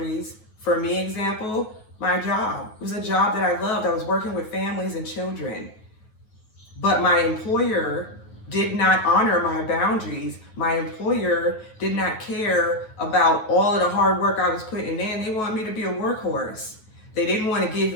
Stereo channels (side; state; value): right; late; 9.3 ms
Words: for me, example, my job. It was a job that I loved. I was working with families and children. But my employer did not honor my boundaries. My employer did not care about all of the hard work I was putting in. They wanted me to be a workhorse. They didn't want to give